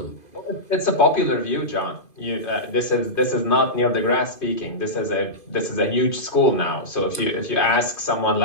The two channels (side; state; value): right; late; 2.5 ms